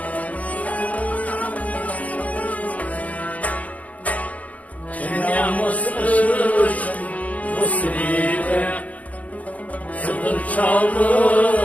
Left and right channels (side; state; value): right; late; 0.070 ms